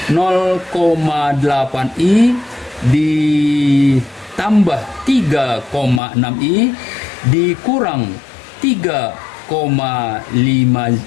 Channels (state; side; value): drops out; right; at 6.0 s